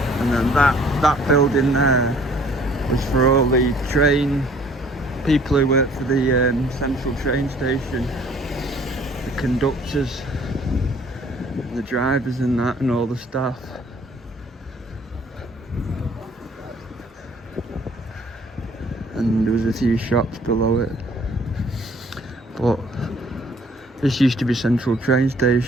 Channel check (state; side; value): normal; both; correlation 0.57